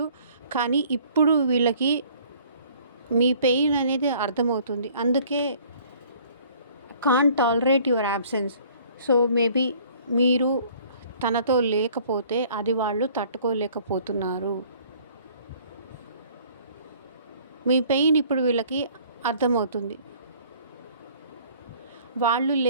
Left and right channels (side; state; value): both; inverted; correlation -0.55